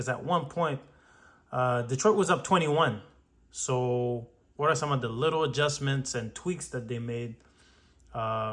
at one point, Detroit was up 21. So what are some of the little adjustments and tweaks that they made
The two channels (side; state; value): both; identical; correlation 1.00